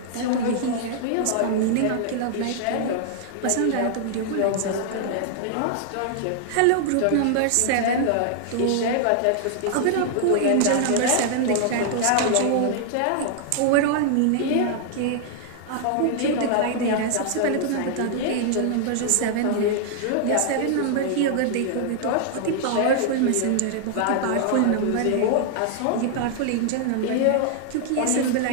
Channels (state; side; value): different; both; correlation -0.01